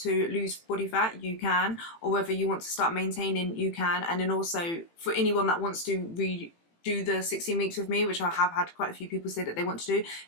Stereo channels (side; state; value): right; late; 18 ms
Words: lose body fat, you can, or whether you want to start maintaining, you can. And then also for anyone that wants to do the 16 weeks with me, which I have had quite a few people say that they want to do,